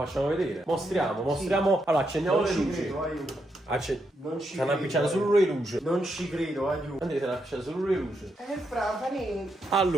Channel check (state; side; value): normal; both; correlation 0.81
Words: vedere. Mostriamo. Allora, accendiamo Non le ci luci. credo, aiuto. Non ci Stanno credo. appicciando solo le luci. Non ci credo, aiuto. Andrea, stanno appicciando solo le luci. Brava, niente.